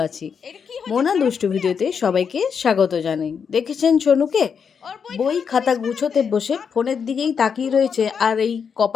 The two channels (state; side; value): quieter; right; 6.6 dB